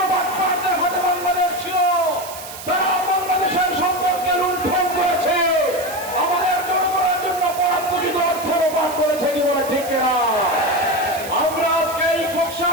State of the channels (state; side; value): noise; right; hiss, 13 dB below the sound